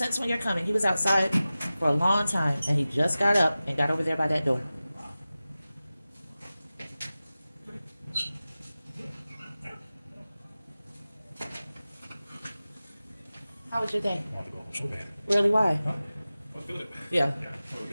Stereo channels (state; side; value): inverted; both; correlation -0.96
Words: when you're coming. He was outside for a long time, and he just got up and got over there by that door. How was your day? So bad. Really, why? Huh? I feel it. Yeah,